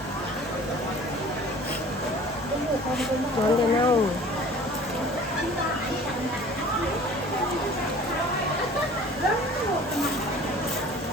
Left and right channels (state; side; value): normal; both; correlation 0.46